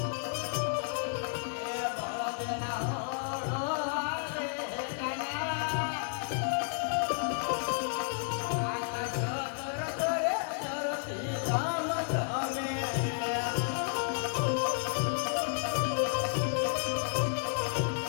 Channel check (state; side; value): silent; right; 56 dB below the other